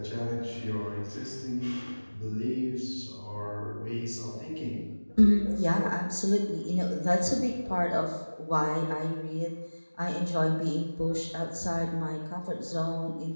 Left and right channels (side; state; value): both; inverted; correlation -1.00